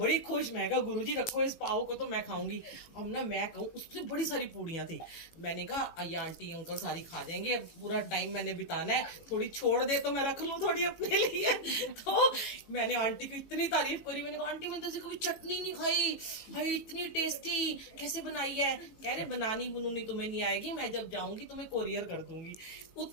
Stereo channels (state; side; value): late; right; 18 ms